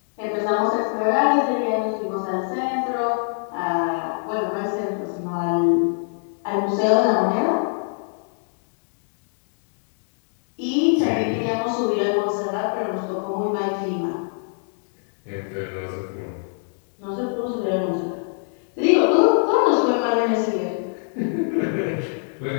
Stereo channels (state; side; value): silent; right; digital silence